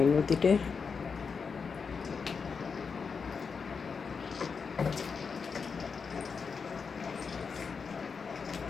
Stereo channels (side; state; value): right; quieter; 5.5 dB